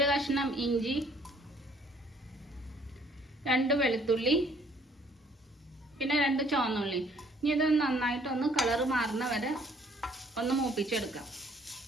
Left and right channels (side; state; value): both; normal; correlation 0.61